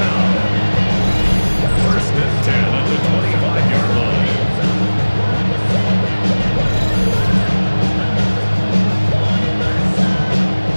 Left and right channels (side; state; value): both; inverted; correlation -1.00